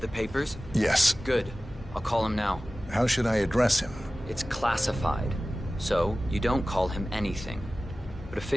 the papers? Yes. Good. I'll call him now. How should I address him? It's classified, so you don't call him anything. But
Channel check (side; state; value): both; normal; correlation 0.96